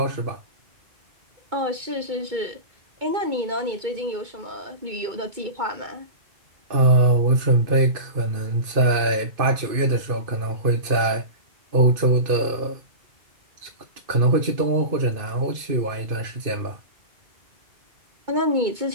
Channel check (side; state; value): left; late; 2.5 ms